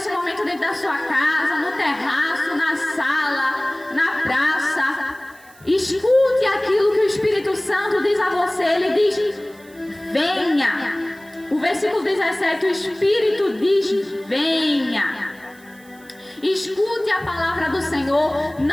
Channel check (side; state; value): right; noise; hiss, 26 dB below the sound